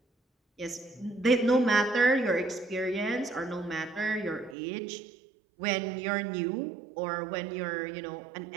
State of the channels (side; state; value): left; drops out; at 4.5 s